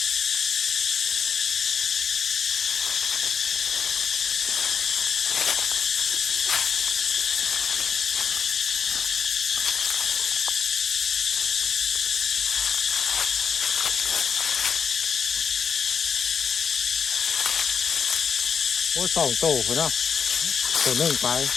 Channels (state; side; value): quieter; right; 6.6 dB